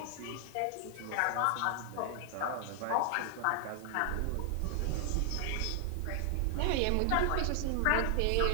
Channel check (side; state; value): both; different; correlation 0.00